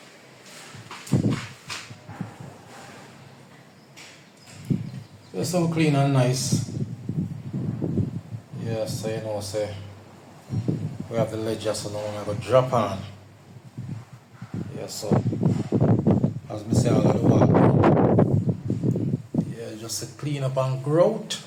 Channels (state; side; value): identical; both; correlation 1.00